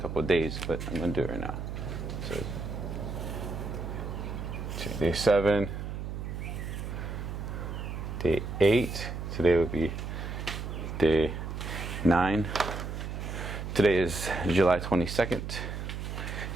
of days, but I'm going to do it right now. So, day 7, day 8. Today would be day 9. Today is July 22nd,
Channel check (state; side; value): noise; right; hum, 5 dB below the sound